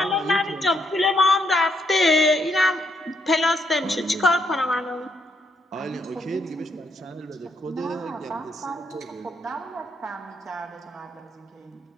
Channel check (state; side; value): normal; both; correlation 0.75